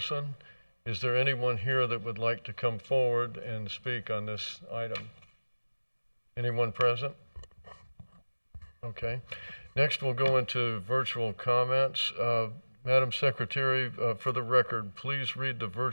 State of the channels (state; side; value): inverted; both; correlation -1.00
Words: Is there anyone here that would like to come forward and speak on this item? Anyone present? Okay. Next, we'll go into virtual comments. Madam Secretary, for the record, please read the